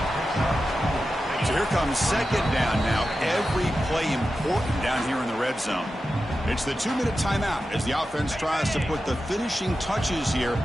So here comes second down now. Every play important down here in the red zone. It's the 2-minute timeout as the offense tries to put the finishing touches here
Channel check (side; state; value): both; normal; correlation 0.92